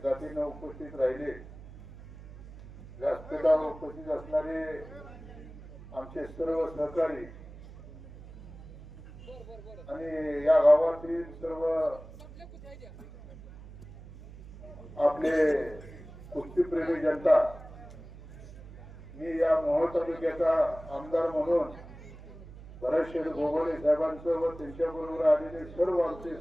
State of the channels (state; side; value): noise; right; hum, 17 dB below the sound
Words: उपस्थित राहिले। व्यासपीठावर उपस्थित असणारे आमचे सर्व सहकारी आणि या गावातील सर्व आपले कुस्तीप्रेमी जनता, मी या मोहोळ तालुक्याचा आमदार म्हणून भरतशेठ गोगावले साहेबांचं व त्यांच्याबरोबर आलेले सर्व आमचे